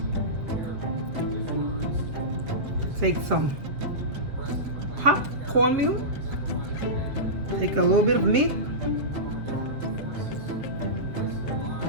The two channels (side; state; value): left; late; 7.7 ms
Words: take some hot cornmeal, take a little bit of meat,